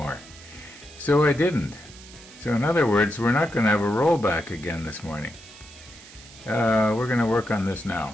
so I didn't. So in other words, we're not going to have a rollback again this morning. We're going to work on this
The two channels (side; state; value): right; noise; hiss, 19 dB below the sound